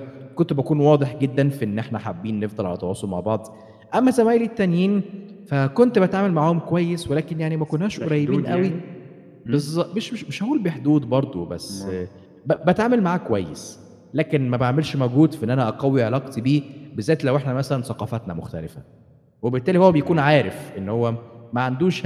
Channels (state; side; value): identical; both; correlation 1.00